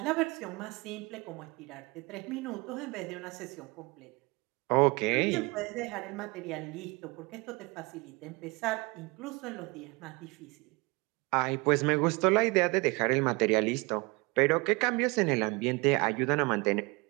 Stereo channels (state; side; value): quieter; left; 26.5 dB